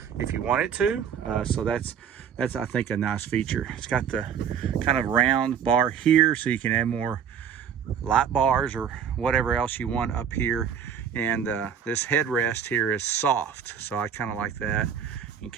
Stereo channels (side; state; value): left; quieter; 8.0 dB